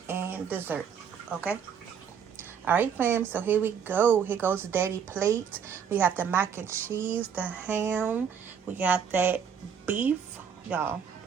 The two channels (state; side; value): quieter; left; 7.4 dB